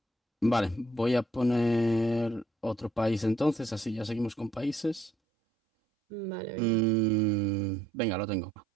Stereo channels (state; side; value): drops out; left; at 5.1 s